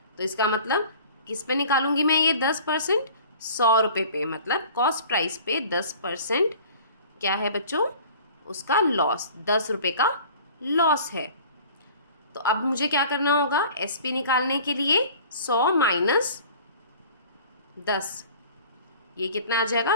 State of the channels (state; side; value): inverted; both; correlation -0.46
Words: तो इसका मतलब किस पे निकालूंगी मैं ये 10%? 100 रुपये पे, मतलब कॉस्ट प्राइस पे 10% क्या है बच्चों, उसका लॉस, 10 रुपये का लॉस है। तो अब मुझे क्या करना होगा, एसपी निकालने के लिए 100 माइनस 10, ये कितना आ जाएगा,